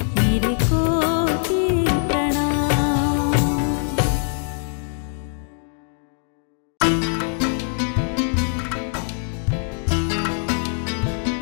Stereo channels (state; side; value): silent; right; 55 dB below the other